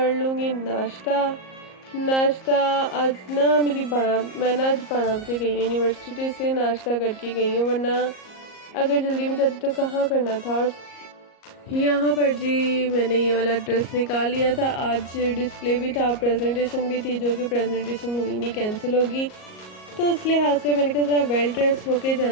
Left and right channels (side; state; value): right; late; 38 ms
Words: लूँगी नाश्ता। आज ना मैं ना आज 12 बजे गई हूँ यूनिवर्सिटी से, नाश्ता करके गई हूँ, वरना अगर जल्दी में जाती तो कहाँ करना था। और यहाँ पर जी मैंने ये वाला ड्रेस निकाल लिया था, आज डिस्प्ले भी था, प्रेजेंटेशन भी थी, जो कि प्रेजेंटेशन हुई नहीं, कैंसिल होगी। तो इस लिहाज से मैंने कहा ज़रा वेल ड्रेस होके